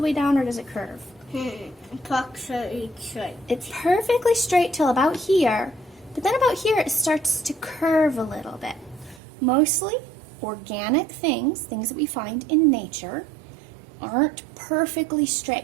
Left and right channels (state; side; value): drops out; left; at 9.2 s